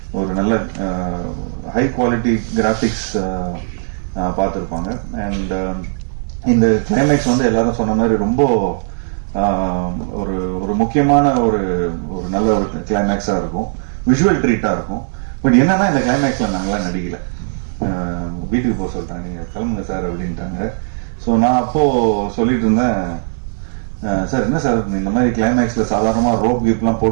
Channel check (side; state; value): left; silent; digital silence